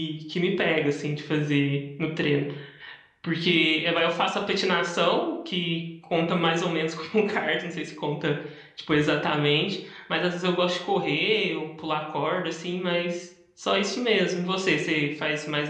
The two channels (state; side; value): identical; both; correlation 1.00